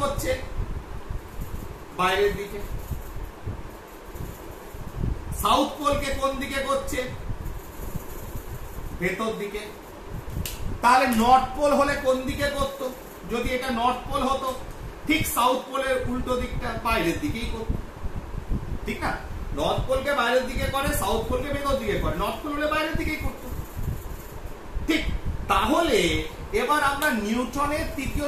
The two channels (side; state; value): both; identical; correlation 1.00